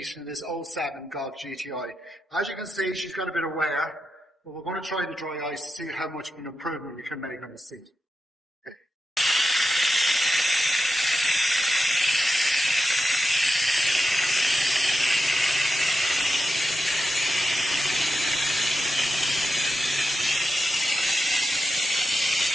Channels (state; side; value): normal; both; correlation 0.89